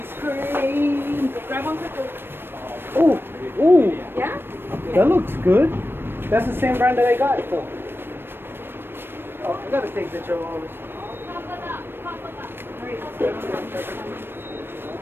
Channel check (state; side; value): late; left; 0.10 ms